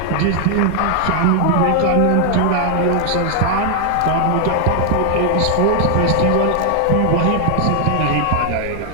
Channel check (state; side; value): different; both; correlation 0.00